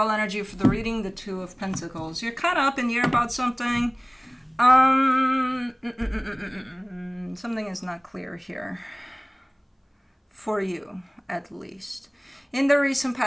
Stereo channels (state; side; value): identical; both; correlation 1.00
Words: energy for the reading, the Two of Pentacles. You're kind of up in the air about something. Something is not clear here. For you, at least. In the recent